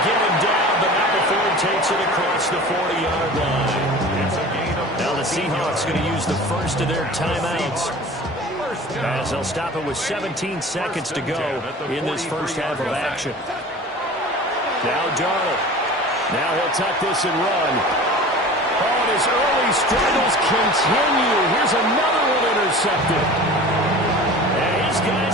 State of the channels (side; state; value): both; normal; correlation 0.39